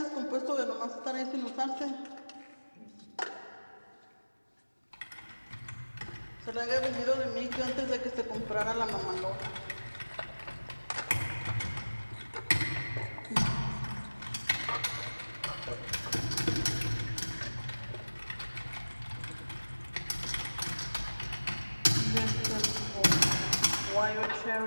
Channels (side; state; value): both; inverted; correlation -1.00